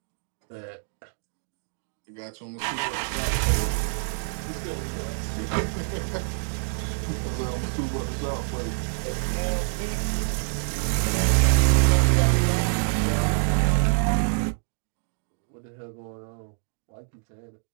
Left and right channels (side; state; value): left; silent; digital silence